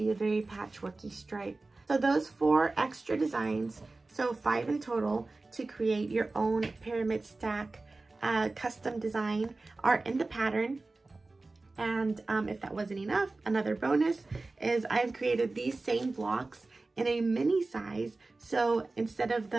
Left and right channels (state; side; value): quieter; left; 3.3 dB